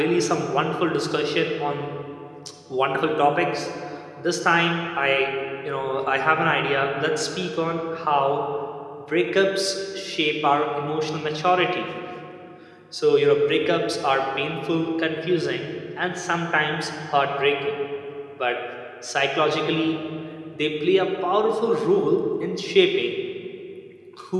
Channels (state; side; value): identical; both; correlation 1.00